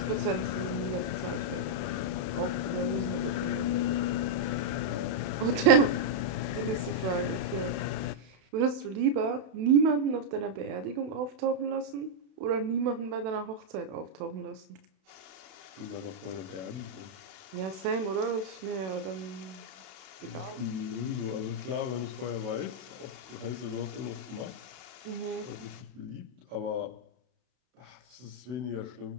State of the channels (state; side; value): late; left; 32 ms